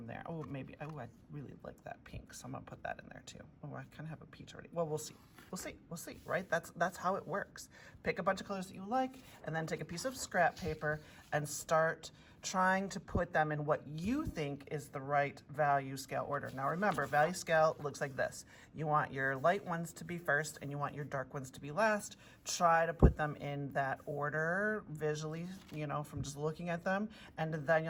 there. Oh, maybe, oh, I really like that pink, so I'm gonna put that in there too. Oh, I kind of have a peach already. Well, we'll see, right? That's how it works. Pick a bunch of colors that you like, and then take a piece of scrap paper and start trying to put them in what you think is the right value scale order. Now remember, value scale looks like this. You want your light ones to be first and you want your dark ones to be last. Try to put them in that order visually, from just looking at them, and then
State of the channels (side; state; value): both; identical; correlation 1.00